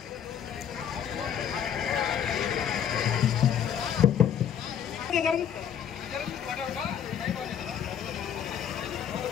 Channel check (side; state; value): right; quieter; 8.9 dB